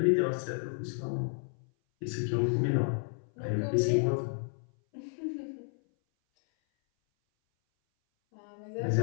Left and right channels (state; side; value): silent; right; 57 dB below the other